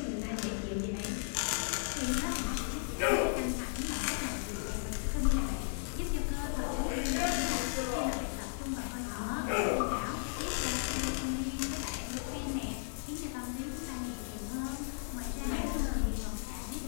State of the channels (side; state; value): right; silent; digital silence